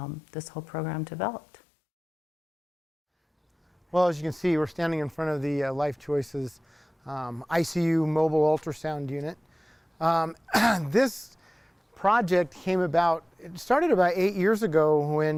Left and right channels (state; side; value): normal; both; correlation 0.98